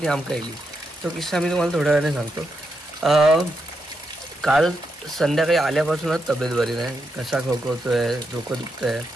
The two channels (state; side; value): normal; both; correlation 0.83